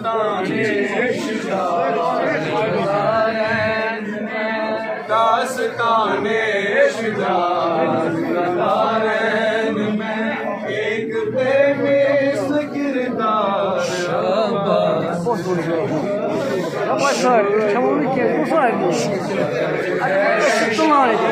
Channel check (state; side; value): identical; both; correlation 1.00